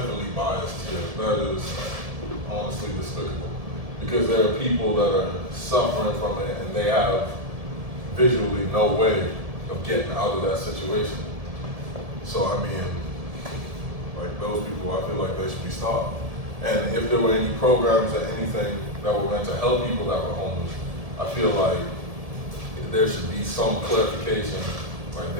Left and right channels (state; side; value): late; left; 1.7 ms